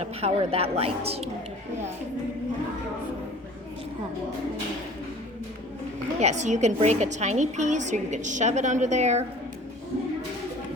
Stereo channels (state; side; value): normal; both; correlation 0.46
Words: power that light. Yeah, so you can break a tiny piece or you can shove it under there.